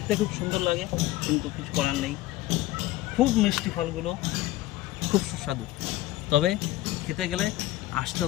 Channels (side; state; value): right; quieter; 16.2 dB